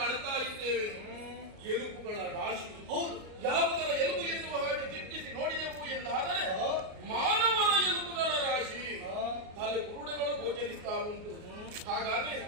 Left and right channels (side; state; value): left; late; 38 ms